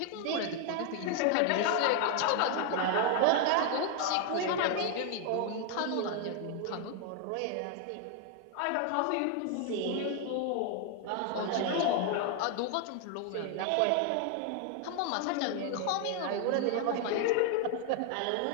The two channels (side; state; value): both; different; correlation 0.01